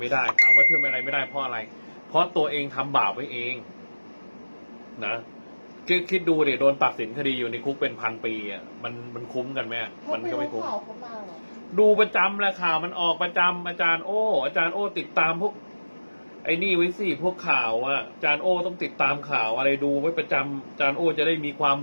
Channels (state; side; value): inverted; both; correlation -1.00